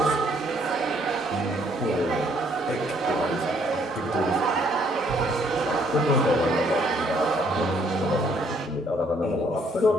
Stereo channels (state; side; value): normal; both; correlation 0.66